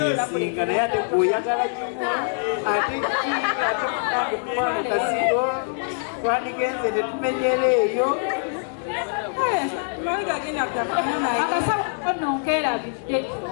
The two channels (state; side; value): silent; right; 62 dB below the other